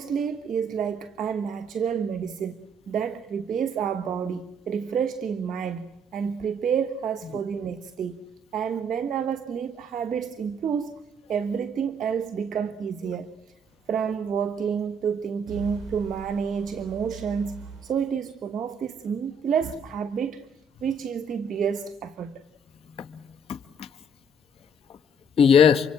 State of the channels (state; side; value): normal; both; correlation 0.65